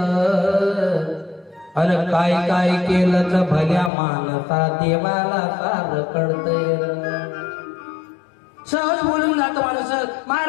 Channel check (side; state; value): right; drops out; at 3.9 s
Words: अन काय काय केलं तर भल्या मानसा देवाला सार कळतैर. सहज बोलून जातो माणूस.